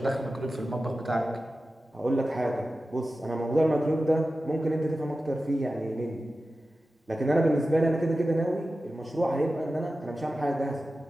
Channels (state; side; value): normal; both; correlation 0.94